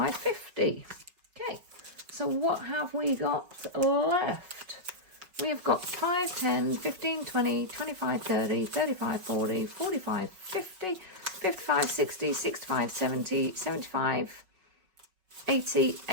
50. Okay, so what have we got left? We have got 5, 10, 15, 20, 25, 30, 35, 40, 45, 50, 55, 60, 65, 70, 75, 80,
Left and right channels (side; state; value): left; late; 5.4 ms